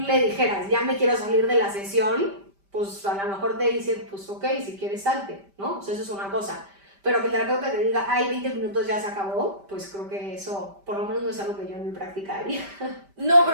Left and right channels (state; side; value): late; left; 5.1 ms